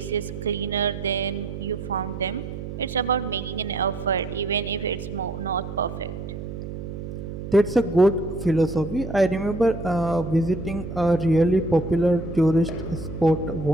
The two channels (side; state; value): right; noise; hum, 8 dB below the sound